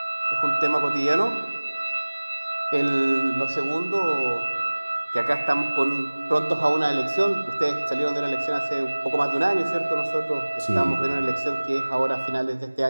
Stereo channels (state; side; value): inverted; both; correlation -1.00